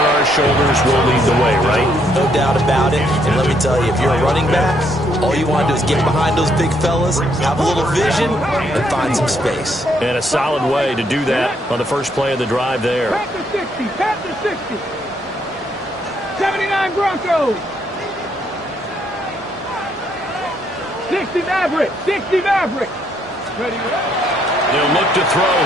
our shoulders, we'll lead the way, right? No doubt about it, and let me tell you, if you're a running back, all you want to do is get behind those big fellas, have a little vision, and find some space. And a solid way to do that on the first play of the drive there. Pat to 60. 79 Broncos. 60 Maverick. 60 Maverick. Ready? They'll look to throw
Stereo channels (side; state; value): both; normal; correlation 0.72